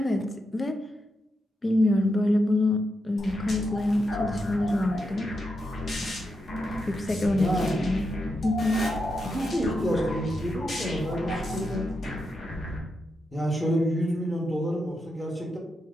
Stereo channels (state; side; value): normal; both; correlation 0.85